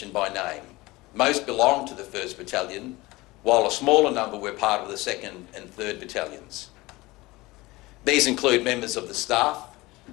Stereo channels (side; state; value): right; quieter; 20.9 dB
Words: by name. Most belonged to the 1st Battalion, while a smaller number were part of the 2nd and 3rd Battalions. These include members of the staff,